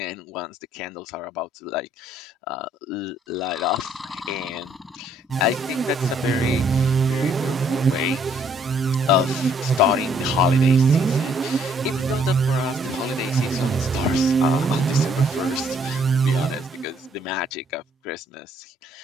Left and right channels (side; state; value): both; normal; correlation 0.66